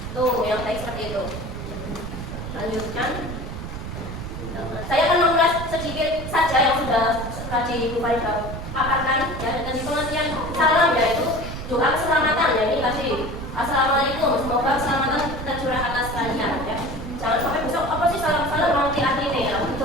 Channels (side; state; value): right; noise; rumble, 8 dB below the sound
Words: Tuh yang baik seperti itu. Lanjutkan. Saya akan mengulas sedikit saja yang sudah tadi Bu Farida paparkan ya, dan pengertian salam yaitu doa keselamatan ya. Ini tadi assalamualaikum, semoga keselamatan tercurah atas kalian ya. Jangan sampai besok apa sih salam-salam nanti artinya ya.